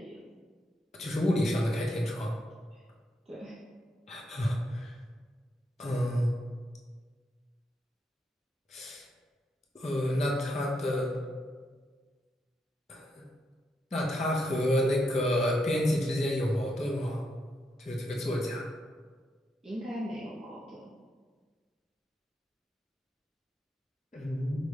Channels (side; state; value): both; normal; correlation 0.81